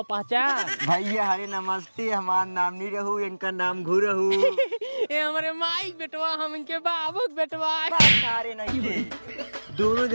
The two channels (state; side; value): inverted; both; correlation -1.00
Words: पहचान। भैया हरे नमस्ते, हमारा नाम नहीं रहू, इनका नाम घू रहू। ये हमारे माई बेटवा, हम इनके बाबू बेटवा। सारे नहीं थे। दोनों